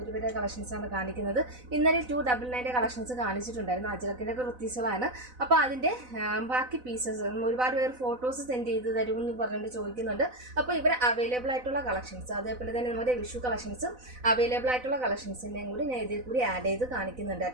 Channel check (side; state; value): left; late; 4.0 ms